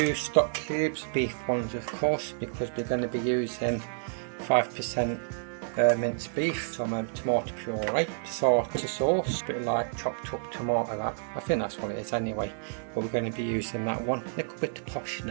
stock cubes, beef ones of course, because we're going to be using 5% minced beef, some tomato puree, tartar sauce, a bit like chopped up tomato that. I think that's what it is anyway, but we're going to be using that one. A little bit of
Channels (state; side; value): silent; left; digital silence